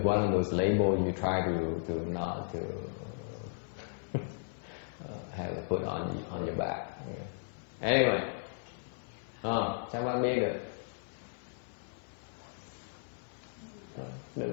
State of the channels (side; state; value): right; silent; 54 dB below the other